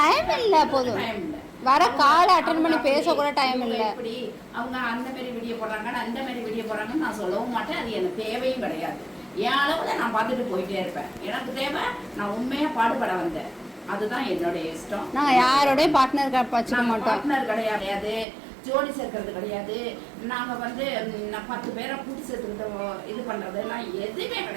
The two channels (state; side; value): drops out; left; at 18.2 s